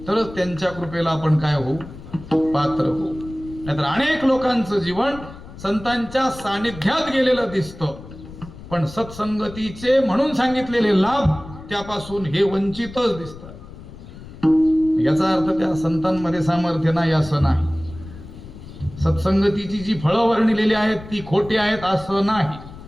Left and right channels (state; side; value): noise; left; rumble, 15 dB below the sound